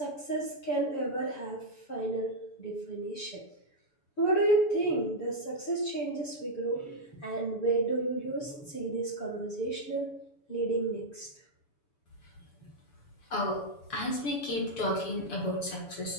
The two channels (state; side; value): late; right; 7.1 ms